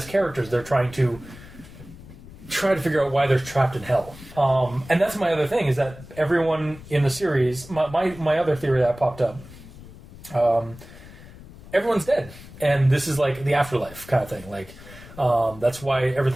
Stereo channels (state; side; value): noise; left; rumble, 18 dB below the sound